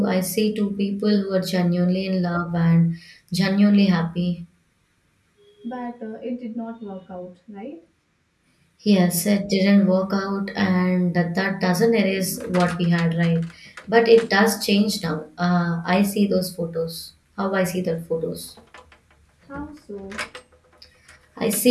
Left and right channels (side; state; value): both; identical; correlation 1.00